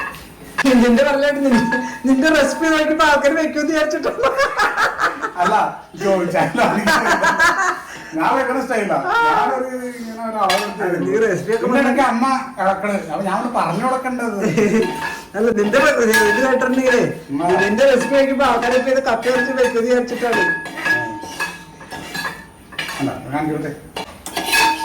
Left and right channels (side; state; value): both; identical; correlation 1.00